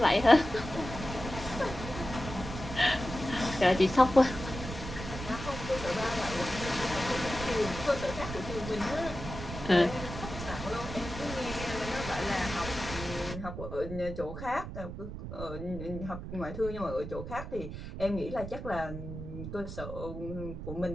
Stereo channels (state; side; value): noise; right; rumble, 8 dB below the sound